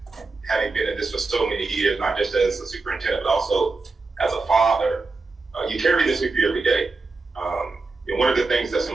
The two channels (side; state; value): left; quieter; 3.8 dB